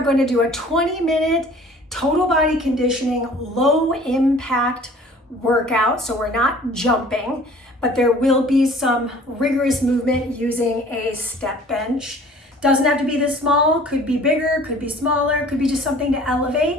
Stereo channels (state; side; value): normal; both; correlation 0.50